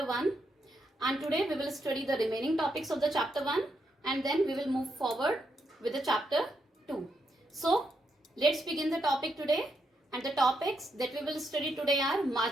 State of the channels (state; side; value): normal; both; correlation 0.80